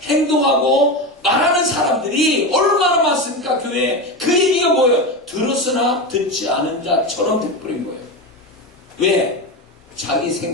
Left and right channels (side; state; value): both; normal; correlation 0.19